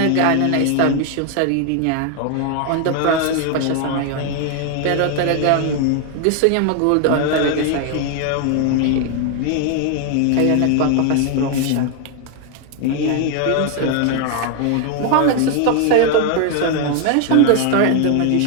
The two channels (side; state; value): both; different; correlation 0.00